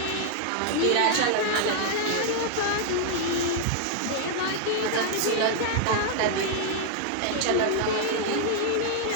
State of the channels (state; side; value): different; both; correlation 0.00